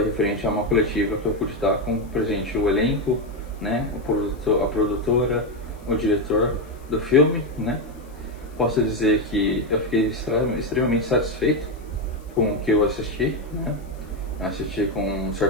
referente a uma coletiva que eu pude estar com presente o elenco, né, a produtora, o diretor do filme, né? Posso dizer que eu fiquei extremamente satisfeito com o que eu assisti, né? Assisti com um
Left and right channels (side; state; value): left; noise; hiss, 29 dB below the sound